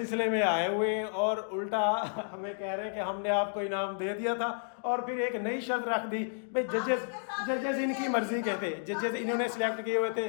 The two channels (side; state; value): right; silent; digital silence